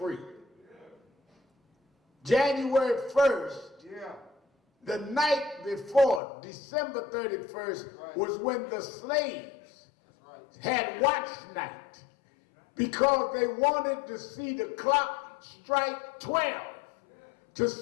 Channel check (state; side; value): drops out; right; at 6.2 s